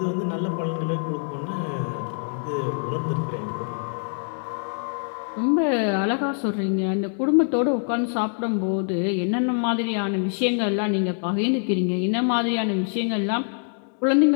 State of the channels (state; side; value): silent; right; 62 dB below the other